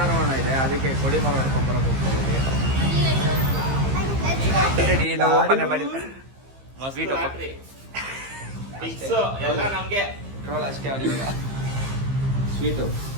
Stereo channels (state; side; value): late; left; 15 ms